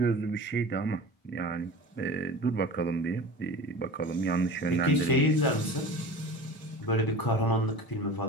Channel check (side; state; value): right; late; 1.0 ms